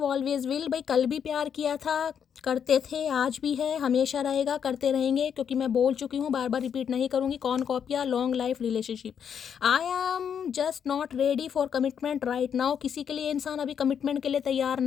always will. भाई कल भी प्यार किया था, करते थे, आज भी है, हमेशा रहेगा, करते रहेंगे, क्योंकि मैं बोल चुकी हूँ, बार बार रिपीट नहीं करूँगी। कौन कॉपिया, long life relationship. I am just not ready for commitment right now. किसी के लिए इंसान अभी कमिटमेंट के लिए तैयार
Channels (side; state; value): right; quieter; 7.8 dB